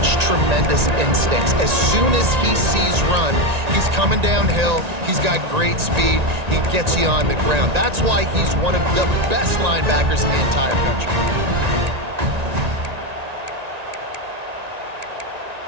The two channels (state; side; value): late; left; 1.9 ms